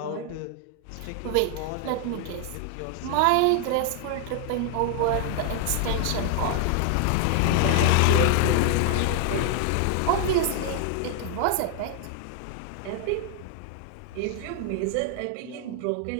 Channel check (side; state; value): both; different; correlation 0.00